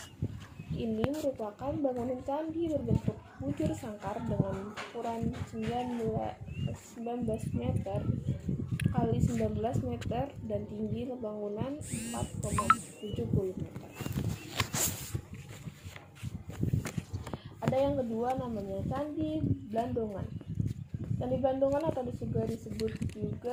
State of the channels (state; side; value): identical; both; correlation 1.00